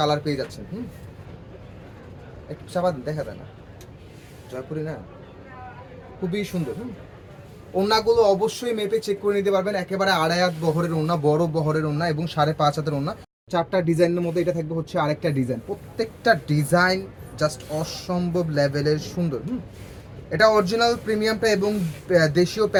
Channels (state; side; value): identical; both; correlation 1.00